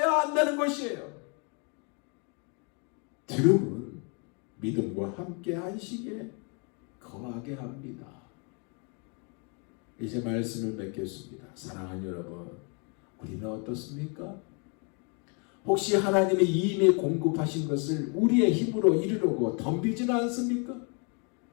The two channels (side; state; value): right; quieter; 35.9 dB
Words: 한다는 것이에요. 들음은 믿음과 함께 안식에 거하게 합니다. 이제 말씀을 맺겠습니다. 사랑하는 여러분, 우리는 어떻습니까? 혹시 하나님이 이미 공급하신 것을 우리의 힘으로 이루려고 덤비지는 않습니까?